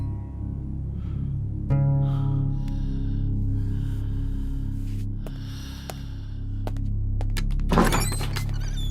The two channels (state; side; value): identical; both; correlation 1.00